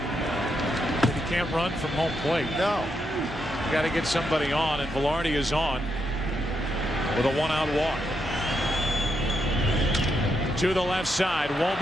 he can't run from home plate. No. Got to get somebody on, and Velarde is on with a 1-out walk. To the left side,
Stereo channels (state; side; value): normal; both; correlation 0.81